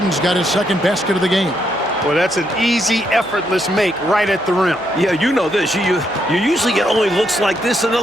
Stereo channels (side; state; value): left; noise; hum, 26 dB below the sound